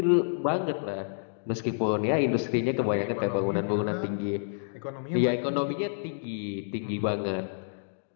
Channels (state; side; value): silent; right; digital silence